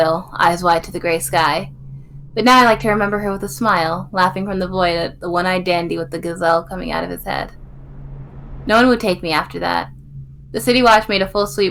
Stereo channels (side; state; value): both; identical; correlation 1.00